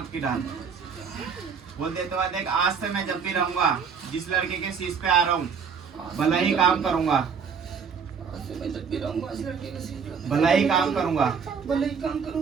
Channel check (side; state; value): left; quieter; 6.3 dB